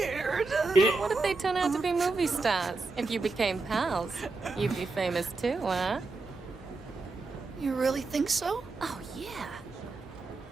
What if they turn out to be movie stars? If you became pals, you'd be famous too, huh? You really think so? Oh, yeah.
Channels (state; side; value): quieter; left; 3.7 dB